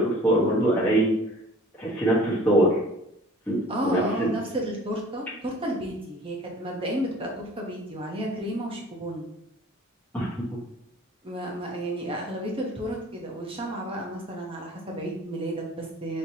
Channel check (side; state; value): both; normal; correlation 0.48